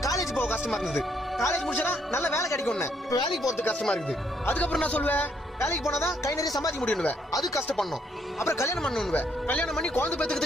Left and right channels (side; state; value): both; normal; correlation 0.71